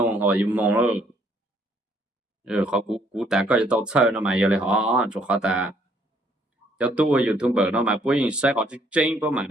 họ yêu mong rồi họ cũng đã có tao chơi nó mà giờ lại họ cho họ ta cho tôi YouTuber nó mà bố sẽ họ chỉ tranh bố mà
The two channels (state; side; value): normal; both; correlation 0.66